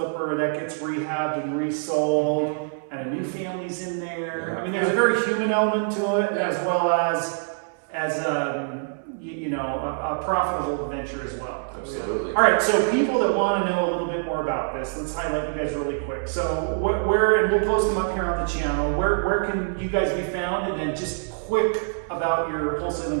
that gets rehabbed and resold, and a new family's in there. I mean, there's a very human element to it, as well as a profitable venture as well. Absolutely. All right, so people that want to know a little bit more about this, let's highlight you guys really quick. So where, and we'll post them up here on the channel, where can you guys be found? And then just quick about your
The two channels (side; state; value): left; silent; 62 dB below the other